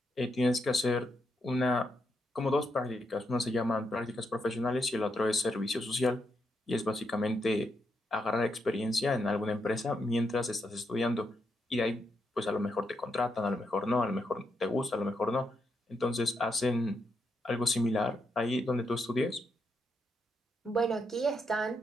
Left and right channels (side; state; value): both; normal; correlation 0.81